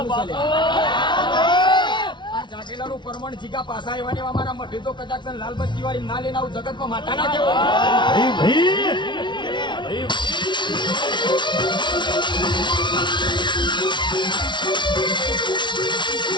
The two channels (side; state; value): right; late; 0.23 ms